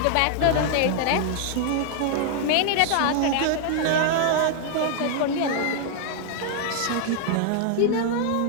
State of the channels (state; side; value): different; both; correlation 0.00